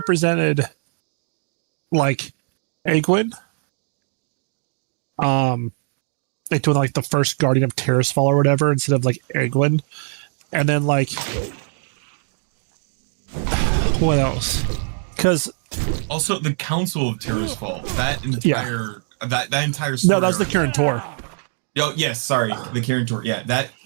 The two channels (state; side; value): silent; left; 64 dB below the other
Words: like, Egwin. They doing like the first Guardian of Terrasfall or whatever instead of like Egwin, and then like what else? Because also the Council of Terrasfall, that entire story. No, that was the Kirin Tor. Oh yes, sorry, the Kirin Tor. Yeah, that